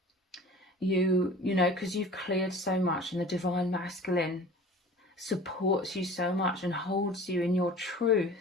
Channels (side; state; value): both; normal; correlation 0.42